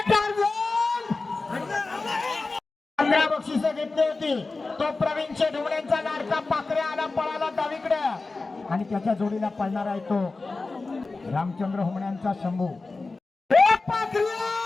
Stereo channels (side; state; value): right; quieter; 3.6 dB